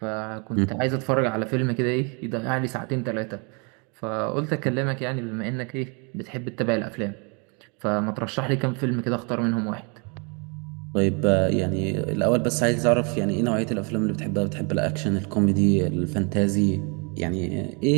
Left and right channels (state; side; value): quieter; left; 34.1 dB